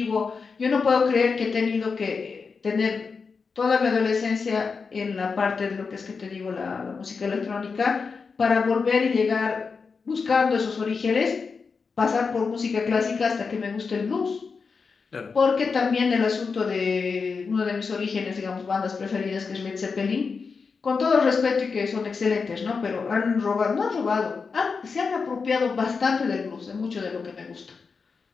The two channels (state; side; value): quieter; right; 5.0 dB